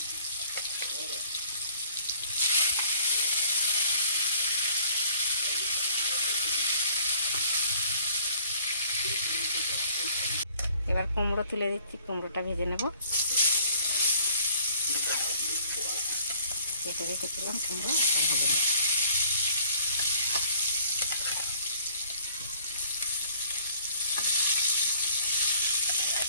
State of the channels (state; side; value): inverted; both; correlation -0.57